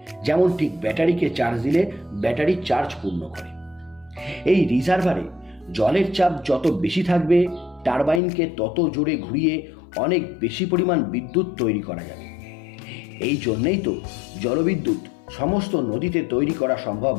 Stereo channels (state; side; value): drops out; right; at 8.2 s